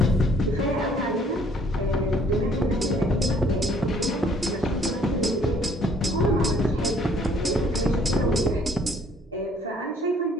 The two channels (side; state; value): both; normal; correlation 0.61